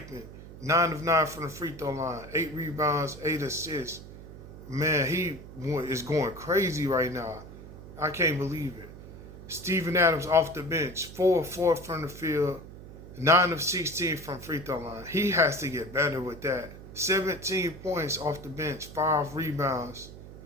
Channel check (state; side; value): noise; right; hum, 15 dB below the sound